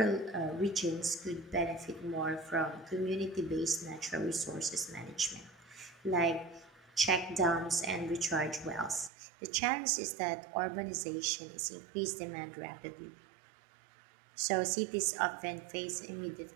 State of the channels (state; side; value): drops out; left; at 9.1 s